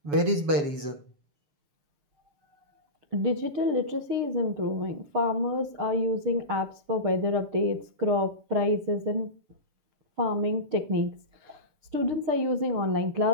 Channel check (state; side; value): late; left; 7.0 ms